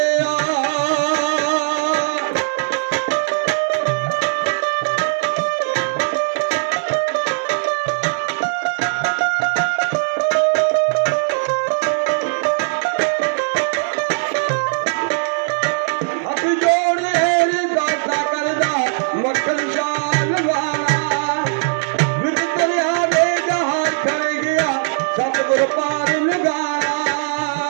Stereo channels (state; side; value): silent; left; digital silence